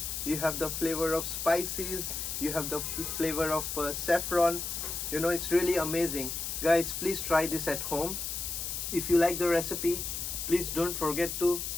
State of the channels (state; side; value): noise; left; hiss, 4 dB below the sound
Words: you have the flavor of spices, you have the flavor of saffron. You know, it's really amazing. Guys, please try this at home. If you like the recipe, please don't forget to